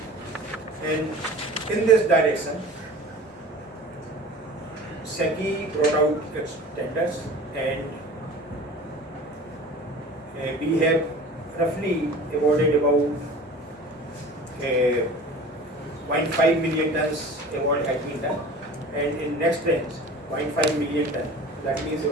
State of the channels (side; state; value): both; normal; correlation 0.41